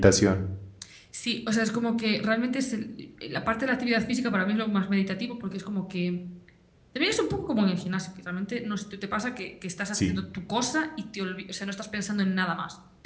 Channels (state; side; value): identical; both; correlation 1.00